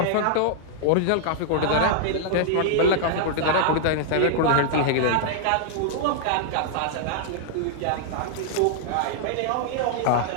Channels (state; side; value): different; both; correlation -0.01